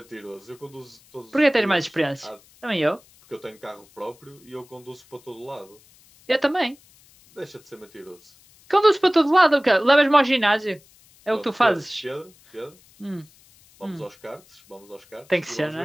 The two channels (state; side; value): noise; left; hiss, 28 dB below the sound